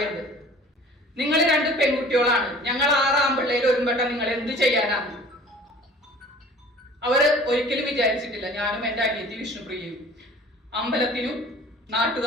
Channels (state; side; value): normal; both; correlation 0.47